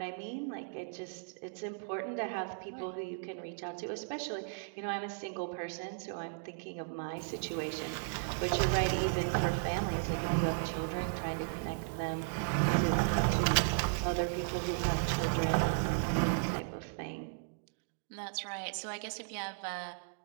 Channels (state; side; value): silent; left; digital silence